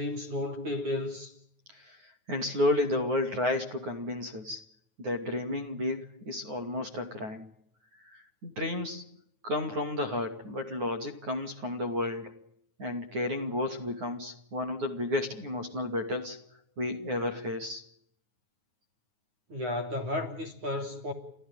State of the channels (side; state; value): left; late; 9.5 ms